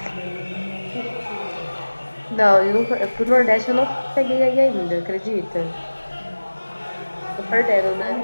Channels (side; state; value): both; inverted; correlation -1.00